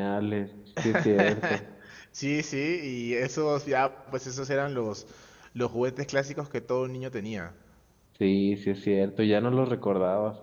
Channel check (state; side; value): identical; both; correlation 1.00